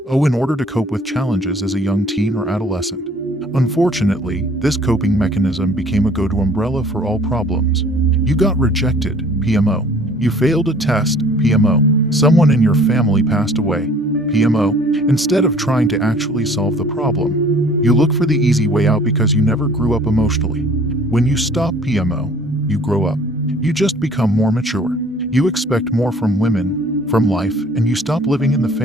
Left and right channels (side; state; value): both; normal; correlation 0.53